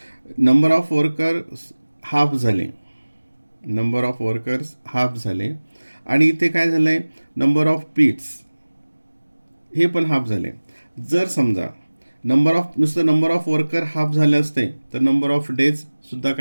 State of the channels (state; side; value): inverted; both; correlation -1.00